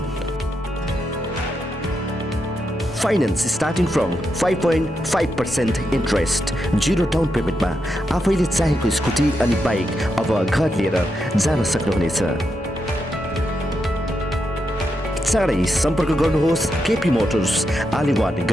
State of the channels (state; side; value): normal; both; correlation 0.84